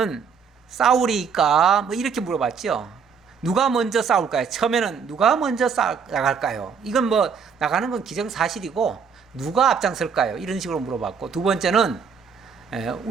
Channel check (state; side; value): quieter; left; 6.2 dB